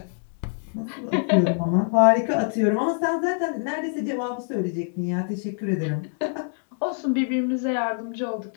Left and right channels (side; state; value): right; silent; digital silence